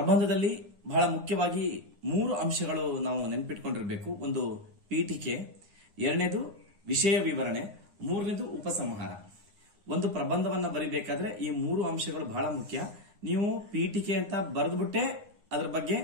ಬಹಳ ಮುಖ್ಯವಾಗಿ 3 ಅಂಶಗಳು ನಾವು ನೆನಪಿಟ್ಕೊಂಡಿರಬೇಕು. ಒಂದು ಪೀಠಿಕೆ, 2ನೇದು ವಿಷಯ ವಿವರಣೆ, 3ನೇದು ಉಪಸಂಹಾರ. ಒಂದು ಪ್ರಬಂಧವನ್ನ ಬರೀಬೇಕಾದ್ರೆ ಈ 3 ಅಂಶಗಳು ಬಹಳ ಮುಖ್ಯ. ನೀವು ಪೀಠಿಕೆ ಅಂತ ಬರೆದ್ಬಿಟ್ಟೆ ಅದ್ರ ಬಗ್ಗೆ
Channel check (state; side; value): late; left; 9.7 ms